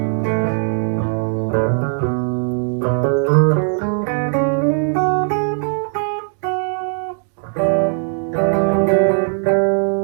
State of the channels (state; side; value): silent; left; 61 dB below the other